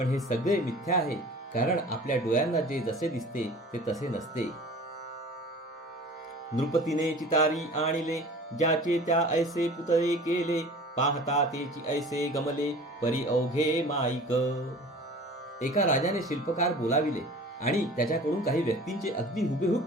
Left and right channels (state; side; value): normal; both; correlation 0.42